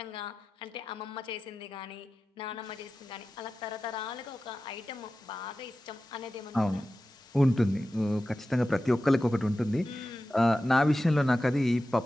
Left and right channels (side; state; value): both; normal; correlation 0.93